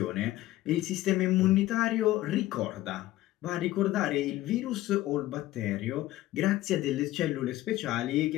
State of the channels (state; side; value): quieter; right; 15.9 dB